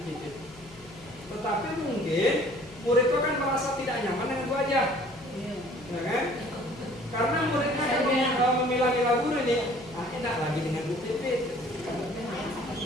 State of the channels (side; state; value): left; noise; hum, 23 dB below the sound